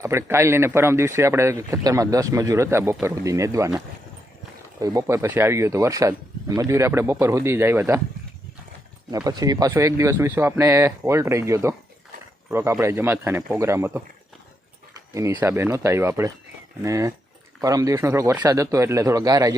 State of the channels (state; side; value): normal; both; correlation 0.81